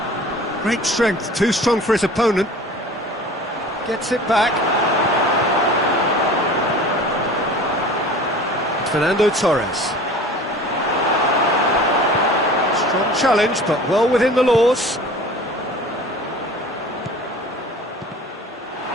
Great strength, too strong for his opponent. Gets it back. Fernando Torres. Strong challenge, but well within the laws.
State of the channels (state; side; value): normal; both; correlation 0.42